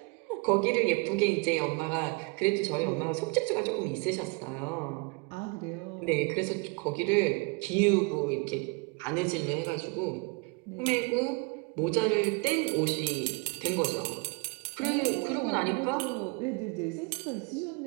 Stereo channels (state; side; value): quieter; left; 31.4 dB